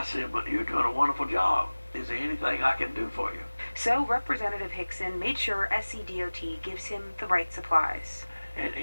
said, but you're doing a wonderful job. Is there anything I can do for you? So Representative Hickson made sure SCDOT gives him the right supplies. And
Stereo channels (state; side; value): inverted; both; correlation -1.00